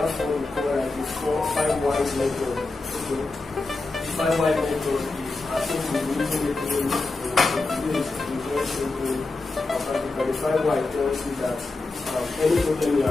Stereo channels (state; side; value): quieter; right; 3.4 dB